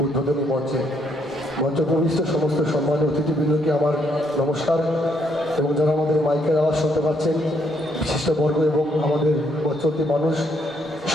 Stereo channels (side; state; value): both; normal; correlation 0.72